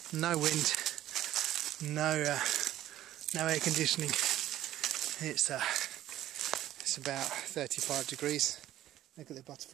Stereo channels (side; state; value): left; quieter; 13.4 dB